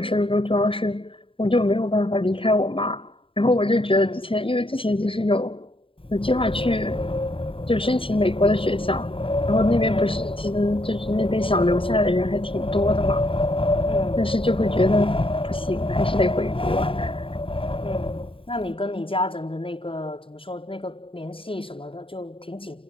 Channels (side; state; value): right; late; 0.26 ms